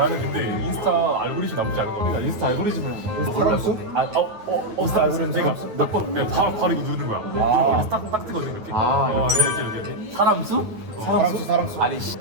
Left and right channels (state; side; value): late; left; 9.4 ms